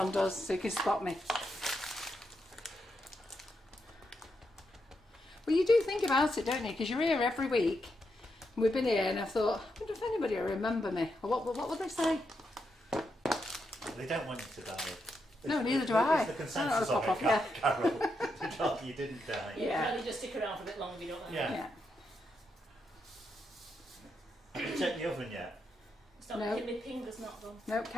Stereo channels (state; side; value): normal; both; correlation 0.83